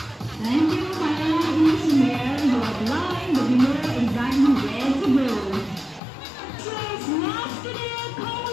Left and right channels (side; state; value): right; drops out; at 6.0 s